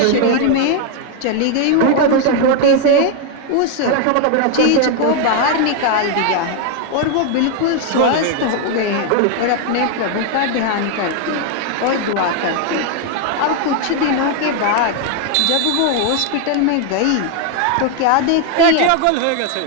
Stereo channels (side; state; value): both; different; correlation 0.01